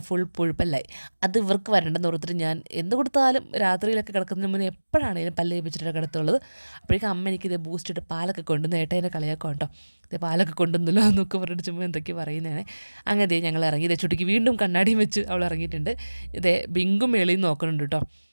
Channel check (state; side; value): inverted; both; correlation -1.00